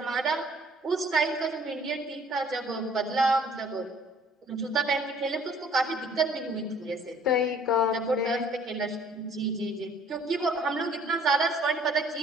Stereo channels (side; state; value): both; normal; correlation 0.56